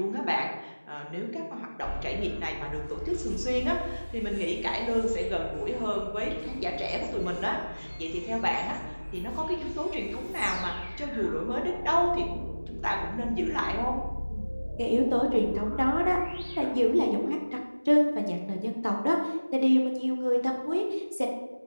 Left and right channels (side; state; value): both; inverted; correlation -1.00